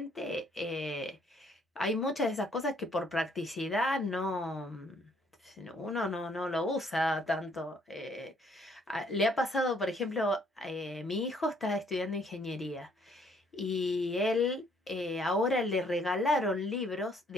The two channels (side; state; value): both; normal; correlation 0.65